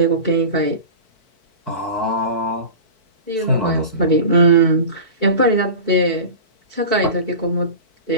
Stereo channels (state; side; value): late; right; 4.6 ms